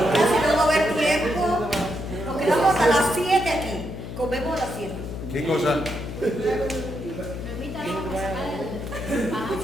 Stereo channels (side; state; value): left; noise; hum, 8 dB below the sound